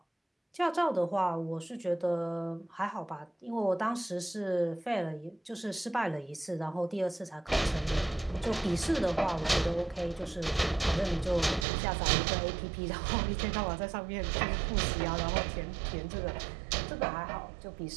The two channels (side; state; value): left; drops out; at 11.7 s